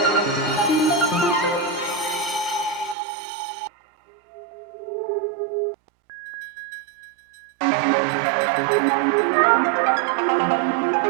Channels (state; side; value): drops out; left; at 3.0 s